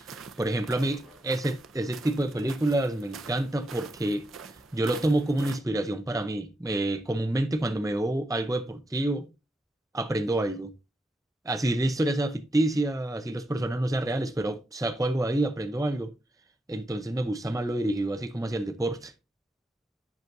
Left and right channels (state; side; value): normal; both; correlation 0.83